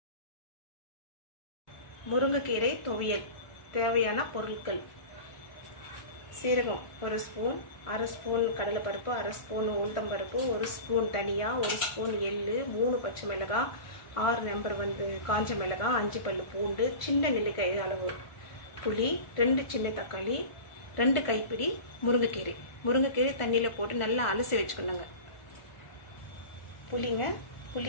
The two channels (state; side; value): late; right; 1.4 ms